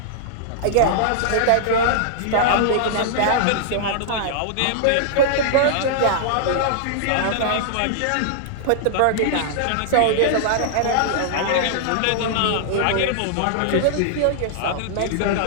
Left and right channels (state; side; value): different; both; correlation -0.01